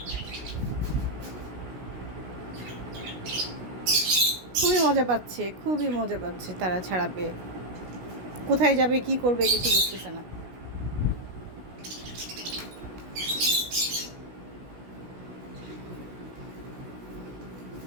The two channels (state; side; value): late; left; 16 ms